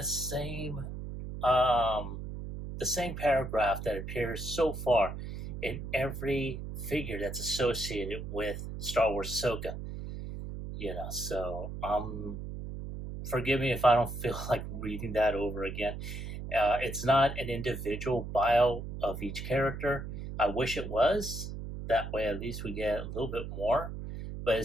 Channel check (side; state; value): right; noise; hum, 7 dB below the sound